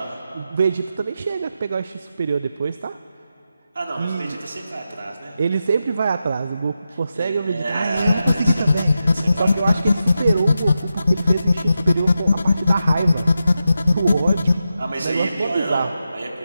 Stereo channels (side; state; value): both; inverted; correlation -0.89